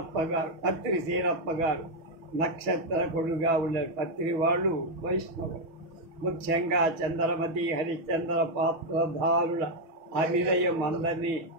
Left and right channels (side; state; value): left; late; 6.1 ms